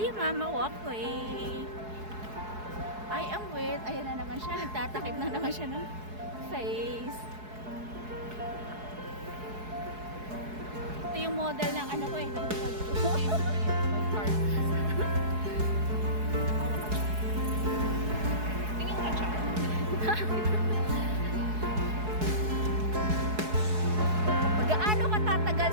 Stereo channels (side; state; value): left; late; 4.7 ms